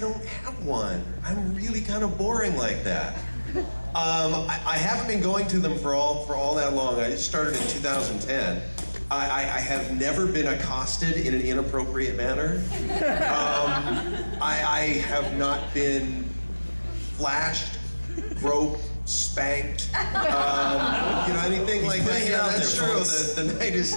don't have one. I'm really kind of boring like that. I haven't been going to them for all that long. I just started in 2010. I have never been accosted in an inappropriate manner. I have not been flashed, groped, spanked, anything like that. Yeah, that's true. The night is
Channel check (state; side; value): inverted; both; correlation -1.00